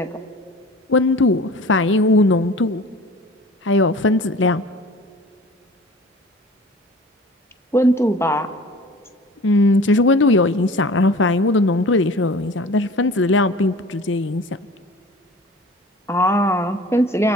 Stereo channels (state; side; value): normal; both; correlation 0.43